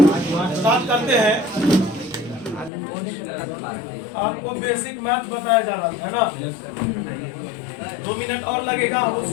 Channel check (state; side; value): drops out; right; at 2.7 s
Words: स्टार्ट करते हैं। आपको बेसिक मैथ बताया जा रहा है ना, 2 मिनट और लगेगा, हम